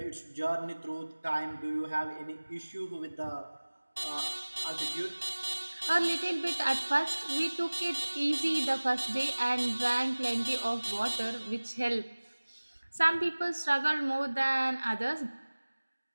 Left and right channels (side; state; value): both; inverted; correlation -1.00